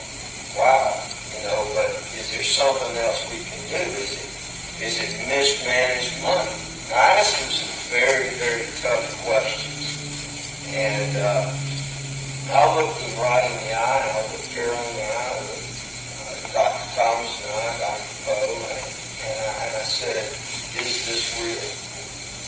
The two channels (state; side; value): identical; both; correlation 1.00